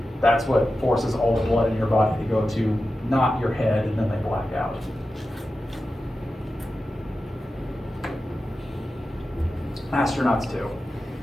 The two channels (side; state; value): both; normal; correlation 0.92